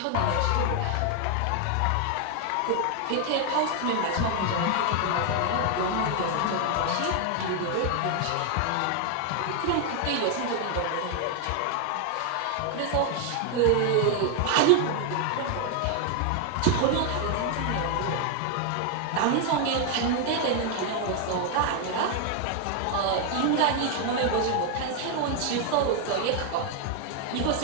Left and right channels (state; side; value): different; both; correlation 0.00